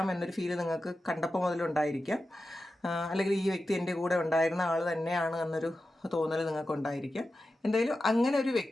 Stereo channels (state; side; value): normal; both; correlation 0.92